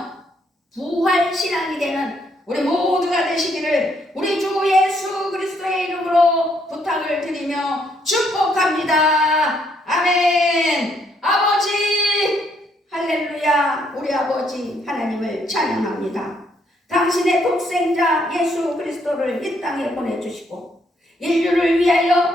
부활신앙이 되는 우리 모두가 되시기를 우리 주 예수 그리스도의 이름으로 부탁을 드리며 축복합니다. 아멘. 아버지 할렐루야. 우리 아버지 하나님을 찬양합니다. 당신의 독생자 예수 그리스도를 이 땅에 보내주시고 인류를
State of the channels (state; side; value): normal; both; correlation 0.71